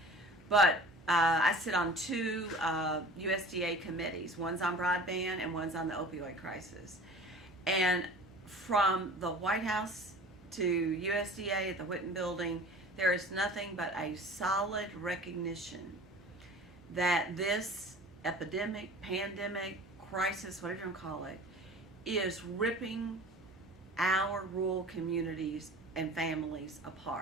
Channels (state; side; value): normal; both; correlation 0.42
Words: But I sit on two USDA committees. One's on broadband and one's on the opioid crisis. And from the White House to USDA at the Whitten Building, there is nothing but a solid recognition that this epidemic, pandemic, crisis, whatever you want to call it, is ripping our rural communities and families